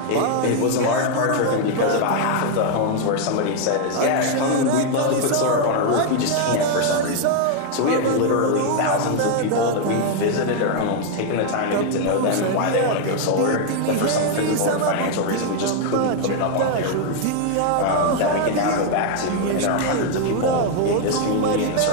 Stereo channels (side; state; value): both; different; correlation 0.00